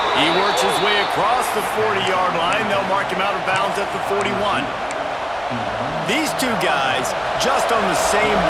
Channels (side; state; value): both; identical; correlation 1.00